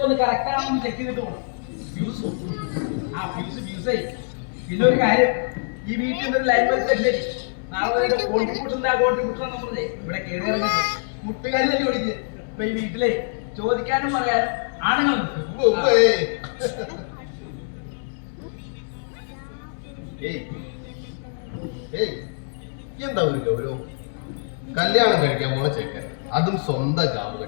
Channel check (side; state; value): right; silent; 62 dB below the other